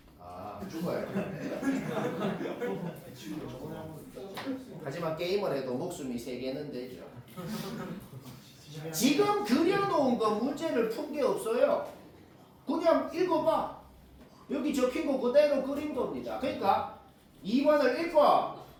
아, 죽어야 돼. 하지만 게임을 해도 목숨이 3개는 되죠. 지금 그려놓은 거 문제를 푼 게 없어요. 그냥 읽어봐. 여기 적힌 거 그대로 그린 겁니다. 그러니까 2번을 읽고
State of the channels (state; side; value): identical; both; correlation 1.00